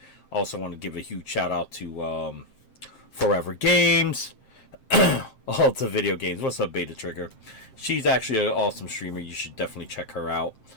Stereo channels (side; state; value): right; late; 7.6 ms